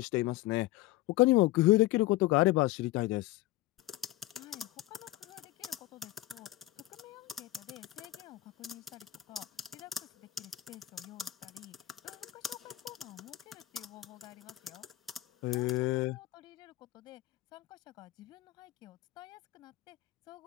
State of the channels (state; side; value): quieter; right; 16.7 dB